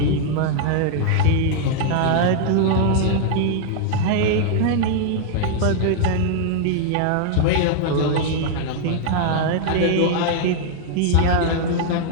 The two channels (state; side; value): different; both; correlation -0.01